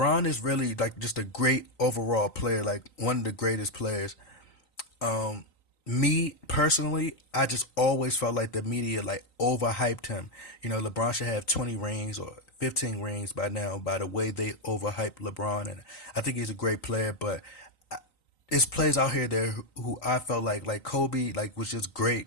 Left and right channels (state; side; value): late; right; 3.9 ms